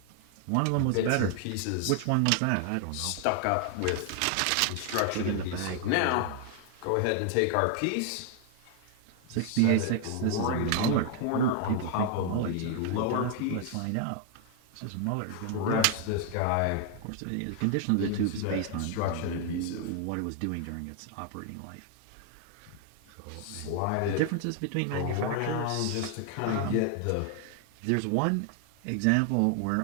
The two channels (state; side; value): different; both; correlation 0.00